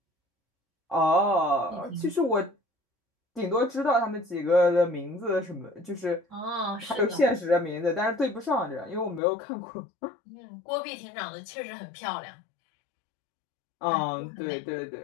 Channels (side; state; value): right; drops out; at 9.2 s